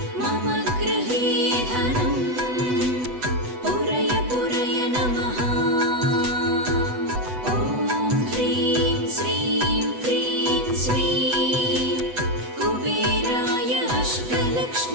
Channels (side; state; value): left; late; 8.0 ms